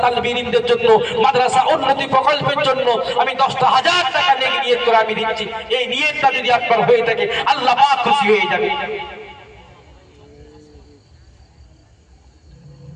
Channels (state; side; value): identical; both; correlation 1.00